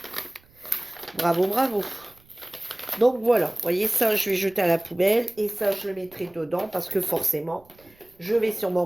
Bravo, bravo. Donc voilà, vous voyez, ça, je vais jeter à la poubelle et ça, je le mettrai dedans parce que forcément, je vais sûrement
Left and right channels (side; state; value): right; noise; rumble, 29 dB below the sound